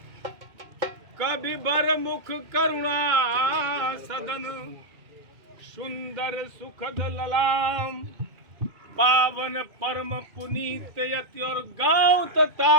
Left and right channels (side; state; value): left; late; 2.2 ms